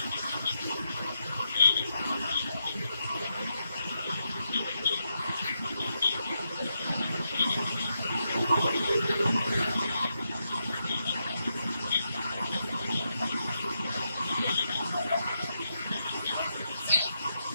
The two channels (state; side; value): inverted; both; correlation -0.83